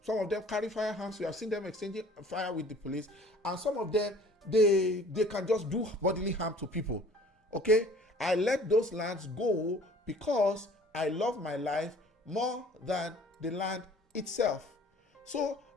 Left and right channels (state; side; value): normal; both; correlation 0.51